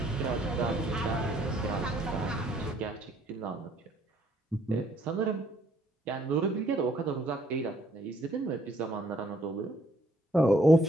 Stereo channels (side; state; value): both; normal; correlation 0.66